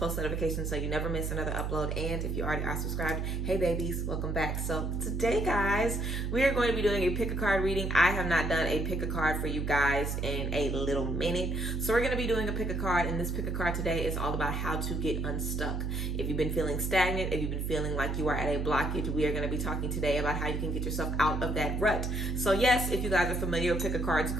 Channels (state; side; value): noise; right; hum, 1 dB below the sound